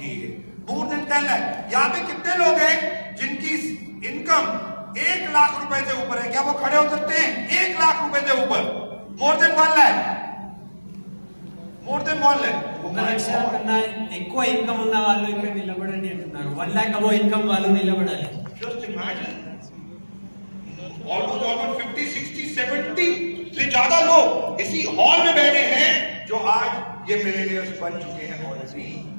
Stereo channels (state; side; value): inverted; both; correlation -1.00